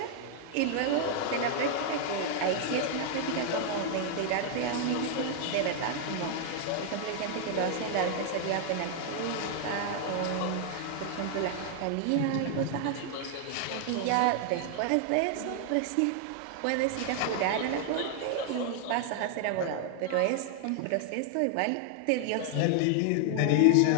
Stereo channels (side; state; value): both; different; correlation 0.00